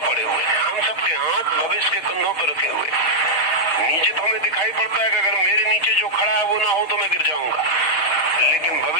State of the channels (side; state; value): right; late; 6.5 ms